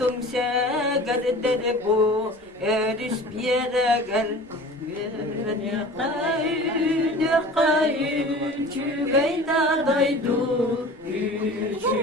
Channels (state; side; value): normal; both; correlation 0.41